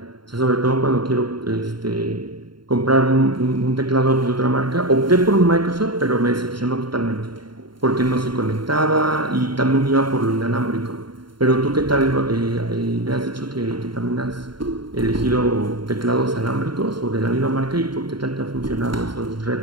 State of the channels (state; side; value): late; left; 0.72 ms